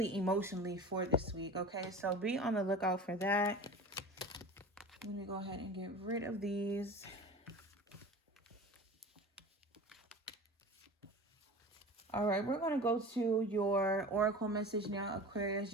emotionally, for this week. Okay, so be on the lookout for that. Let me go ahead and get rid of these. All right, we're going to go to your oracle message now, Aquarius.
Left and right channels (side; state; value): both; normal; correlation 0.35